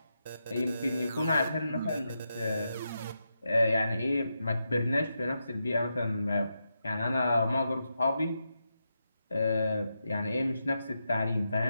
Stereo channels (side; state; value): both; inverted; correlation -0.86